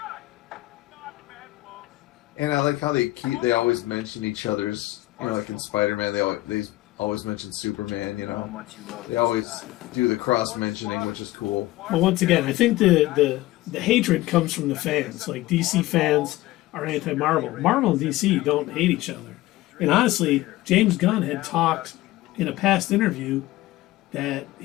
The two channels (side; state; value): right; quieter; 17.6 dB